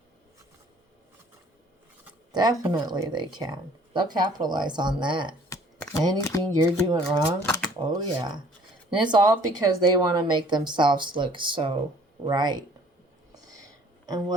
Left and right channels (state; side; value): normal; both; correlation 0.55